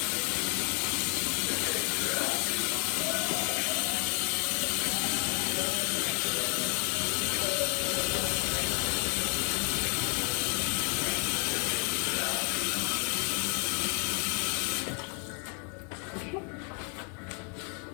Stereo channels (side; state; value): right; quieter; 39.2 dB